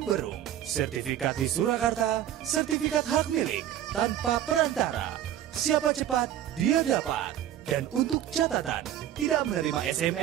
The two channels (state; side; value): quieter; left; 11.4 dB